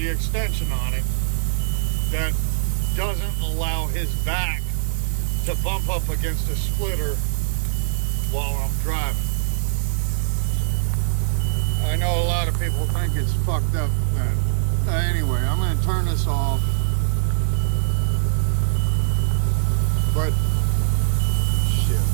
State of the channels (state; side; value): silent; left; digital silence